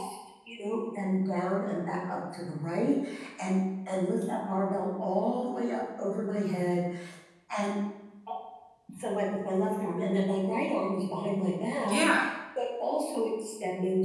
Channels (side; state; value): both; identical; correlation 1.00